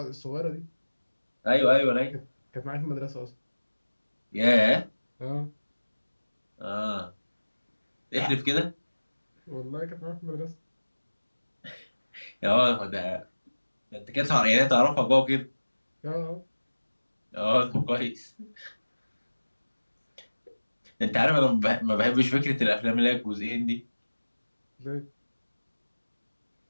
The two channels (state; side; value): inverted; both; correlation -1.00